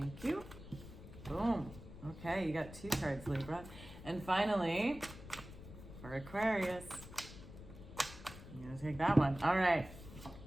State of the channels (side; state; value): left; noise; rumble, 14 dB below the sound